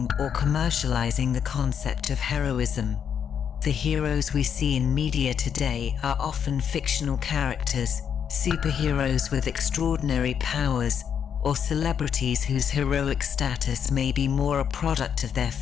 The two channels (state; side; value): quieter; right; 7.9 dB